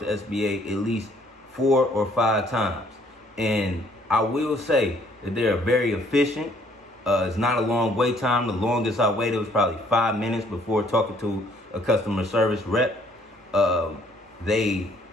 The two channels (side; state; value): both; normal; correlation 0.63